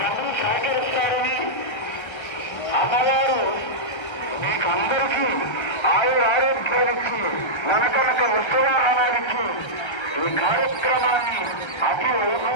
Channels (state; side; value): late; right; 1.3 ms